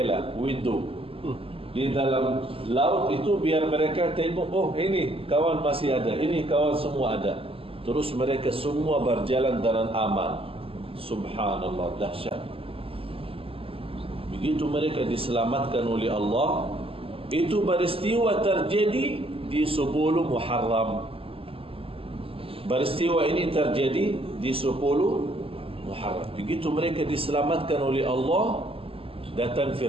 window di dalam laut itu, biar mereka tengok, oh ini kawan masih ada, ini kawan semua ada. Terus mereka semua berjalan dengan aman. Subhanallah, dahsyat. Begitu mereka diselamatkan oleh Allah. Itu peristiwa terjadi di 10 Muharram. Peristiwa ini terjadi di 10 Muharram. Begitu mereka diselamatkan oleh Allah, datang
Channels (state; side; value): late; left; 0.27 ms